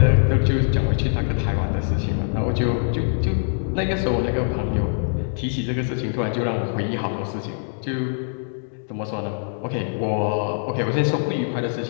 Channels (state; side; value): silent; right; digital silence